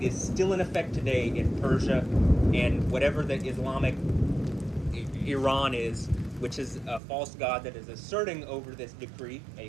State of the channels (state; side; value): drops out; left; at 7.0 s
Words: is still in effect today in Persia and whatever the Islamic Iran is, which is a false god that is asserting over this decree, a